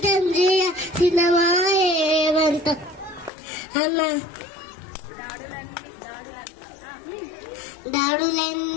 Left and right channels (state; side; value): drops out; right; at 3.3 s